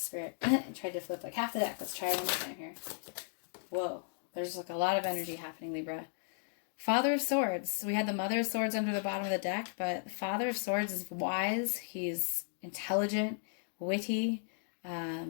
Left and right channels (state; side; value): silent; right; digital silence